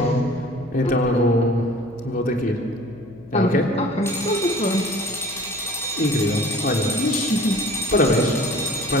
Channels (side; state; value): left; noise; hum, 22 dB below the sound